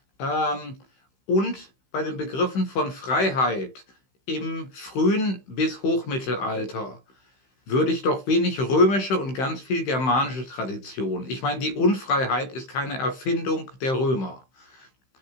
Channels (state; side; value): late; right; 15 ms